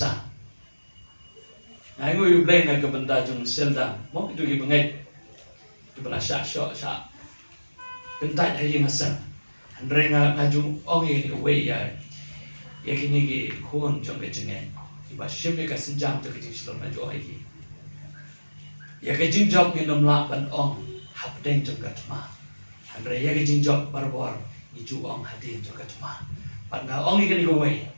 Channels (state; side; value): inverted; both; correlation -1.00